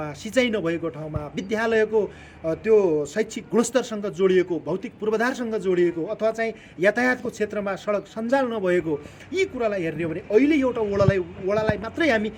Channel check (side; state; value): both; identical; correlation 1.00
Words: सिँचाइ नभएको ठाउँमा विद्यालयको त्यो शैक्षिक गुणस्तरसँग जोडिएको भौतिक पूर्वाधारसँग जोडिएको अथवा चाहिँ यातायातको क्षेत्रमा सडक सञ्जाल नभएको यी कुरालाई हेर्ने हो भने अहिले एउटा वडालाई मात्रै हामी